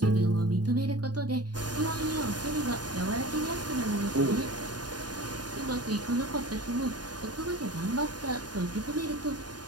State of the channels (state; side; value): late; left; 0.70 ms